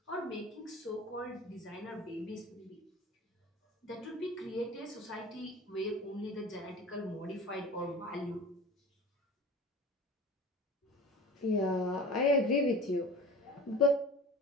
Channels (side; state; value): both; normal; correlation 0.38